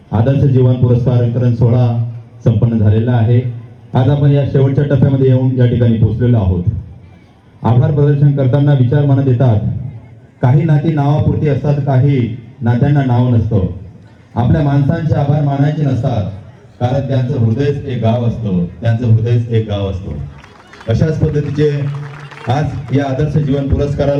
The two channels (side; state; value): both; identical; correlation 1.00